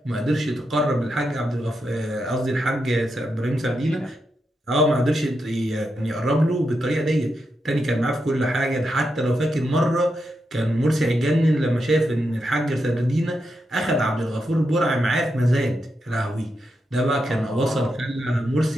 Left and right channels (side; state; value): both; normal; correlation 0.85